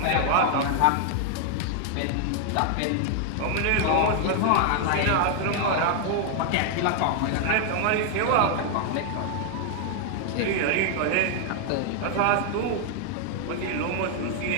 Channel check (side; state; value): both; different; correlation 0.00